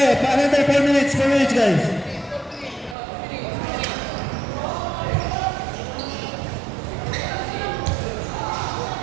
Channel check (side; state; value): left; drops out; at 3.0 s